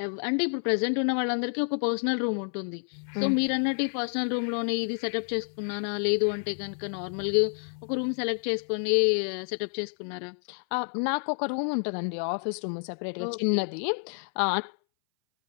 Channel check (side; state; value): right; silent; 59 dB below the other